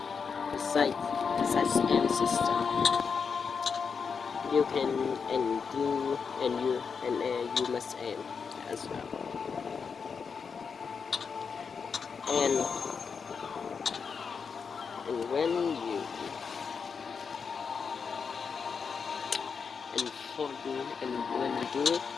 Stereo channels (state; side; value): quieter; right; 5.8 dB